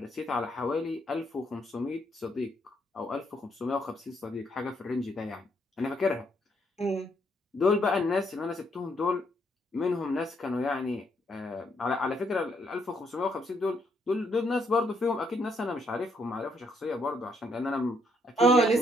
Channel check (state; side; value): normal; both; correlation 0.73